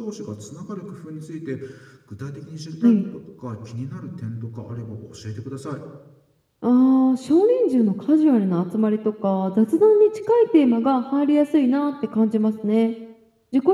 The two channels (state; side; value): identical; both; correlation 1.00